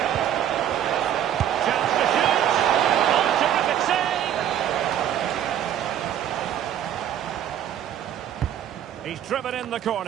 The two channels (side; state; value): left; quieter; 10.5 dB